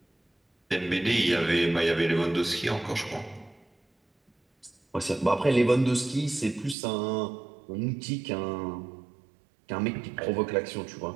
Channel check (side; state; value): left; drops out; at 6.8 s